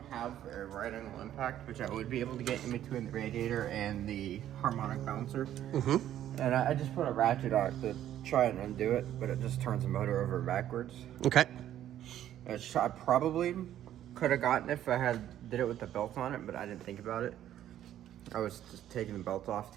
have a right angle impact, which I would be able to get in between the radiator and the harmonic bouncer. And I just put a ratchet on it to try and undo it, but it just turns the motor over backwards. Okay. Which I probably could have gotten if I did it with the belt on it, but I didn't think about it. I was just taking the belt off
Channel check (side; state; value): left; quieter; 11.7 dB